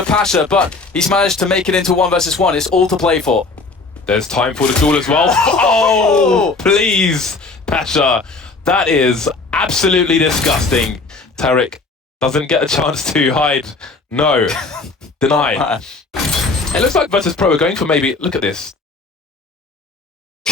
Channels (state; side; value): quieter; right; 3.8 dB